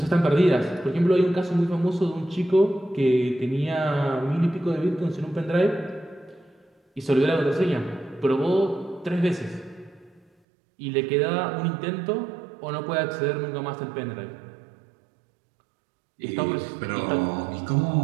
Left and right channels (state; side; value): drops out; left; at 10.2 s